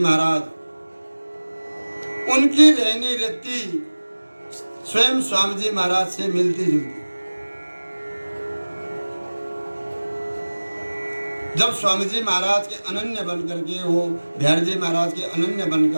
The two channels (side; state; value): both; inverted; correlation -1.00